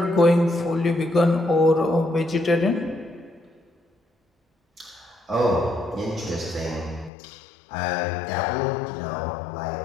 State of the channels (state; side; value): drops out; right; at 7.1 s